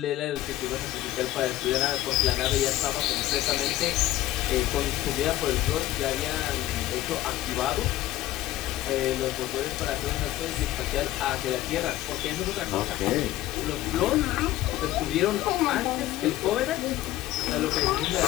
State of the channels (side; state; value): right; quieter; 15.4 dB